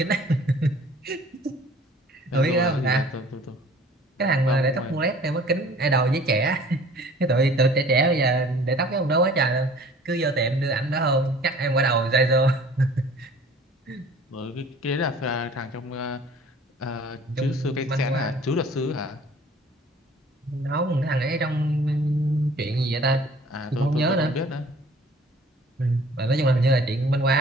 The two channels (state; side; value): normal; both; correlation 0.50